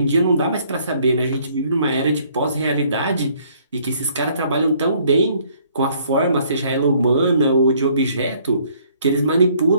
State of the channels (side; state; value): both; inverted; correlation -0.62